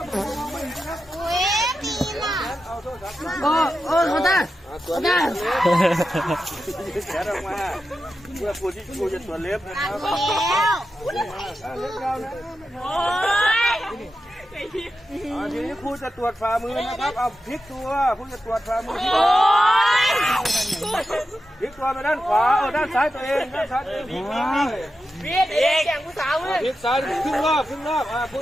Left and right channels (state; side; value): normal; both; correlation 0.90